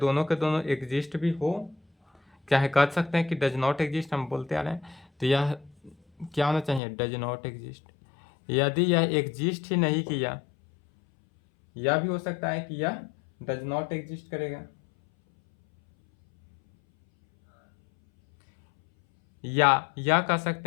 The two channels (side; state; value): right; drops out; at 6.8 s